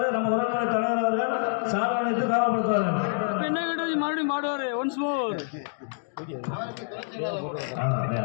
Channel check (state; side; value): silent; right; digital silence